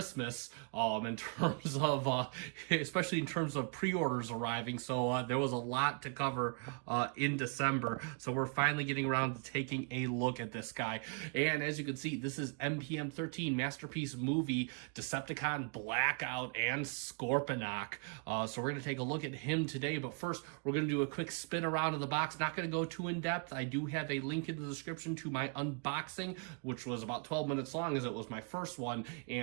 in terms of especially in terms of pre-orders arriving, so there was a lot to cover in December, so we're finally getting around to taking a look at this guy. And as you can see, this is MPM-13 Masterpiece Movie Decepticon Blackout and Scorponok. So we're going to take a look at him today, but first we're going to do a quick spin around of the box. Not going to go too in depth. I do have a link in the description to my unboxing, which was about 12 minutes long as it was my first one,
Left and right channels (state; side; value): quieter; left; 39.1 dB